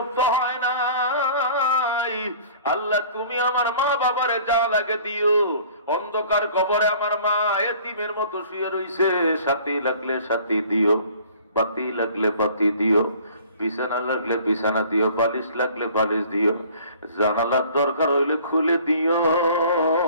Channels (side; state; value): both; inverted; correlation -0.50